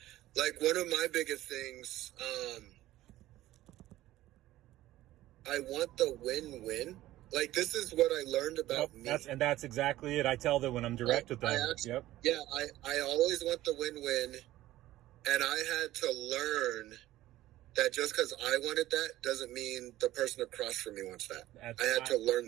Like one of my biggest things, I want the win-win. Like this is what I learned about me. That's exactly it. I tell them when I'm direct with them. I always want the win-win, and I had to learn that just because I wanted that doesn't mean the person across from me wants that. I had to learn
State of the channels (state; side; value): quieter; left; 15.4 dB